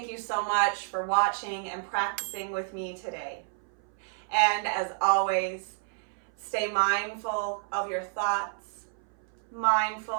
you so much for watching and practicing with me today. And as always, stay mindful of your thoughts,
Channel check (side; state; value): left; silent; 58 dB below the other